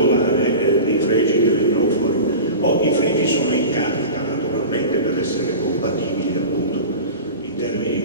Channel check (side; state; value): both; inverted; correlation -0.32